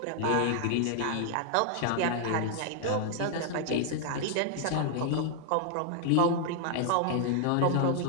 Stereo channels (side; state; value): both; different; correlation 0.00